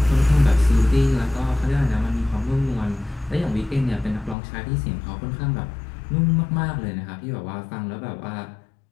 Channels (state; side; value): drops out; right; at 4.4 s